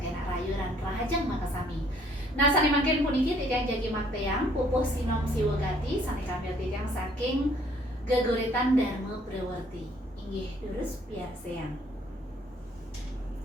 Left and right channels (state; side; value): normal; both; correlation 0.62